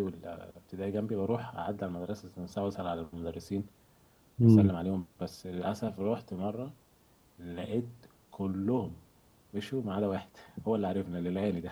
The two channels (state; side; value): identical; both; correlation 1.00